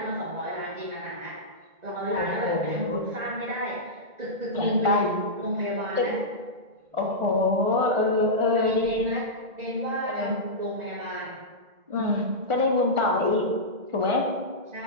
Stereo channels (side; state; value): left; late; 1.4 ms